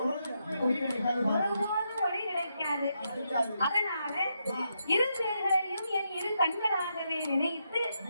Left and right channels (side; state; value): both; inverted; correlation -0.82